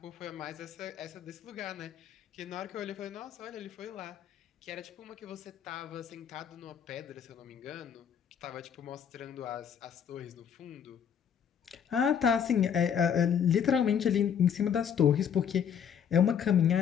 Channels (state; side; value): quieter; right; 8.1 dB